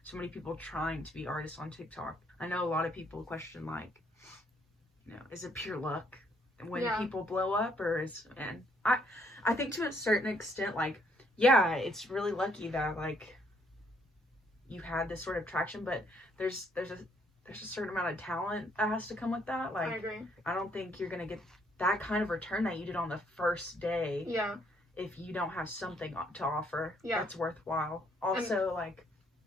so many people trying to be artists on TikTok, I know a lot of people question, like, you know, is it pure luck when people blow up, or and I think to a certain extent, like, yeah, it's really lucky that like you had this sort of traction, but there's a certain amount of talent that has to come with that. Like, I agree. I don't think you're gonna get that kind of return that you did on the first day. Yeah. If you don't have something to offer that's worthwhile. Also, like,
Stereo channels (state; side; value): normal; both; correlation 0.68